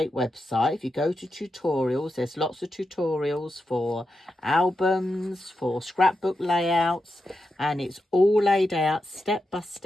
website. If you go to tutorials, there's lots of tutorials for albums, for scrapbook layouts, and it's all laid out step by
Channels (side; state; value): both; normal; correlation 0.87